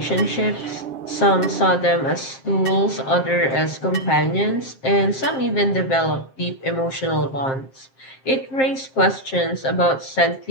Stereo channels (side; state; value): right; late; 7.5 ms